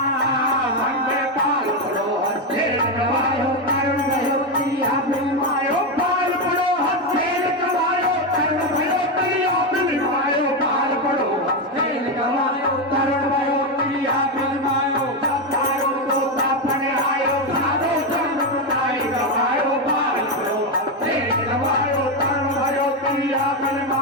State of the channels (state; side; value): normal; both; correlation 0.09